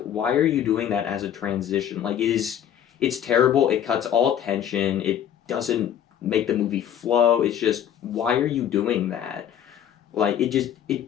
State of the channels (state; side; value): quieter; right; 9.8 dB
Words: why are you doing that as a transition? Like, it's terrible. It cuts all tension. It doesn't make the movie flow. It's just, why are you doing that? Like, it